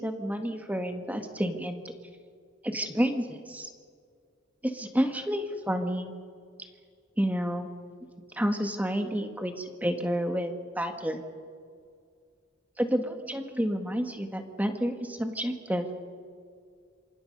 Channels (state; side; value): normal; both; correlation 0.87